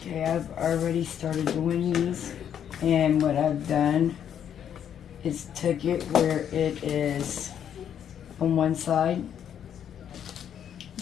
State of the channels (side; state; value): right; quieter; 9.1 dB